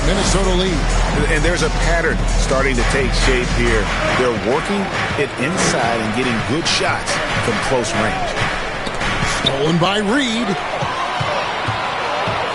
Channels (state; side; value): identical; both; correlation 1.00